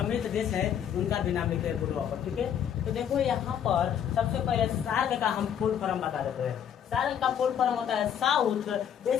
देश है उनका भी नाम लिखे हैं बुढ़वा पर, ठीक है। तो देखो यहाँ पर सबसे पहले सार्क का हम फुल फॉर्म बता देते हैं। सार्क का फुल फॉर्म होता है south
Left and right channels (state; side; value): quieter; right; 9.0 dB